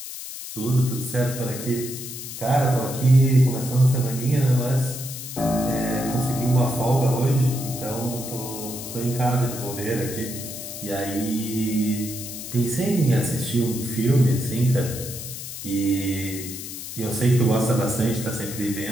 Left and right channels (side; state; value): left; noise; hiss, 9 dB below the sound